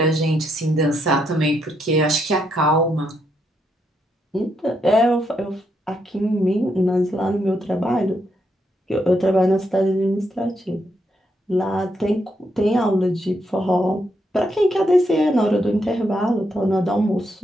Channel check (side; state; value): both; normal; correlation 0.78